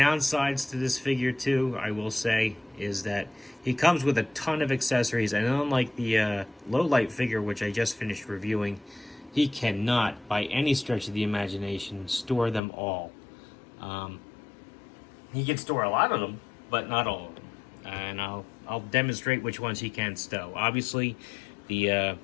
to this figure, too, I will say, is that he comes with a ton of accessories, and unlike the low light figure, which I just finished reviewing, he cannot, by any stretch of the imagination, store them all. He can store a lot of them, but not all of them. And I'll demonstrate which ones he can stow. Obviously, the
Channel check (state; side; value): drops out; right; at 12.6 s